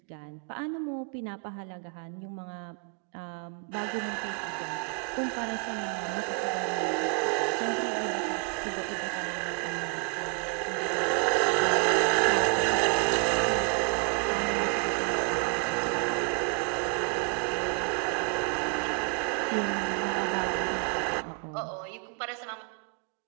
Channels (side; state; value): left; quieter; 38.9 dB